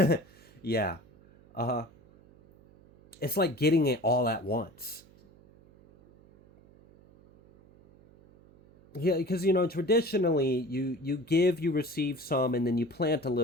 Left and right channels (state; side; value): noise; right; hum, 26 dB below the sound